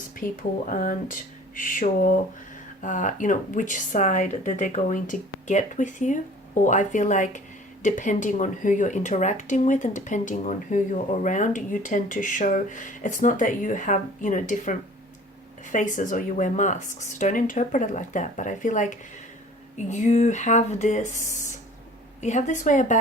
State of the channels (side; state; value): both; normal; correlation 0.48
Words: people aren't sure, which side that they're going to get with you. Or I feel like depending on who you're interacting with and depending on who you're around, you tend to show, it's not that you have, different faces or you wear masks. Don't interpret it like that. But I feel like you have this way